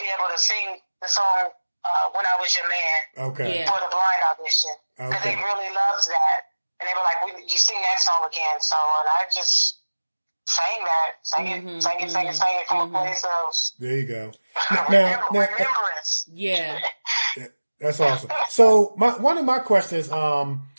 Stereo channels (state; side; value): inverted; both; correlation -1.00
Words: able to sing the song "When I Was Your Man" for the blind audition, because they really loved that, and they were like, "You sing that song again?" So, and I just sang it from a place of. There you go. Remembrance. Yeah. That's awesome. So one of my questions,